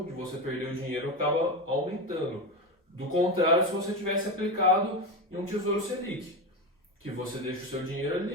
de você perder o dinheiro acaba aumentando. Do contrário, se você tivesse aplicado em um Tesouro Selic, que você deixa o seu dinheiro ali,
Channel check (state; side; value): normal; both; correlation 0.17